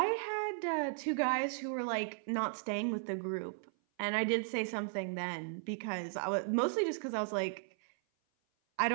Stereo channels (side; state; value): left; silent; 54 dB below the other